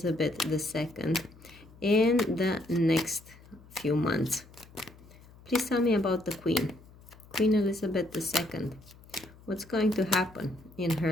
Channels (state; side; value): noise; left; hum, 23 dB below the sound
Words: II in the next few months? Please tell me about the Queen Elizabeth II. What's going to happen in